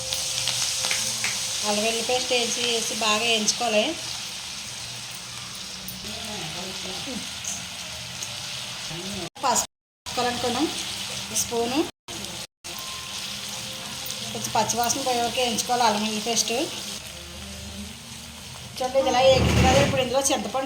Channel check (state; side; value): identical; both; correlation 1.00